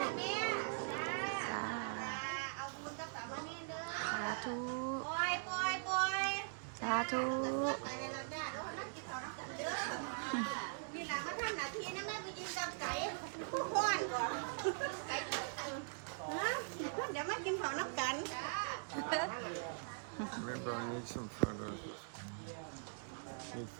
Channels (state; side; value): silent; left; digital silence